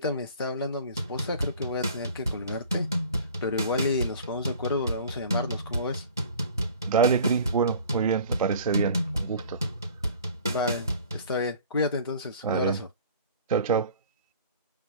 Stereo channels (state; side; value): inverted; both; correlation -0.46